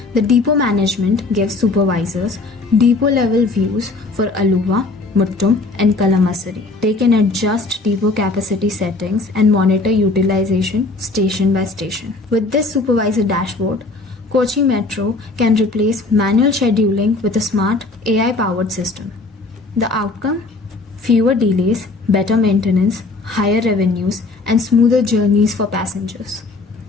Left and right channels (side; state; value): right; quieter; 3.5 dB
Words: the depot management gives supervisors depot-level views for Aluva, Muttum, and Kalamassery. They can adjust depot capacity settings and monitor utilization station by station. With this supervisor dashboard, Kochi Metro can replace manual scheduling with a smart AI-powered system. The outcome? Fewer delays, better maintenance, higher revenues, and smoother journeys for passengers.